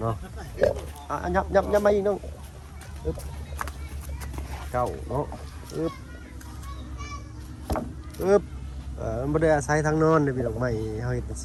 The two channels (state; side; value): identical; both; correlation 1.00